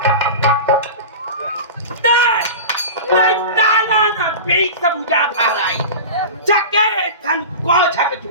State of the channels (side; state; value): both; inverted; correlation -0.30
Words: बीच सब उजा भाराई चके धन को छक